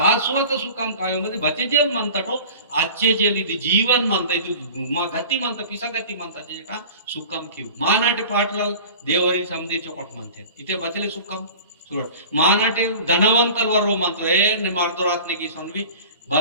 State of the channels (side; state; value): both; inverted; correlation -0.40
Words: सुखम काय मध्ये बचेजेल म्हणतात हो आजचे जेल ಇದು ಜೀವನ್ म्हणता ಇದು ಗತಿ म्हणता पिसागती म्हणता जे का सुखम किव मानाटे पाटलाल देवरी समधी चोकट म्हणते इथे बचले सुखम सोड मानाटे धनवंतल वरो म्हणतो ए ने मारतो रातने की सोनवी